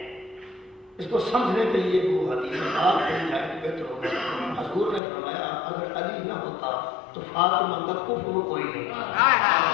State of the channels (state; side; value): drops out; right; at 5.0 s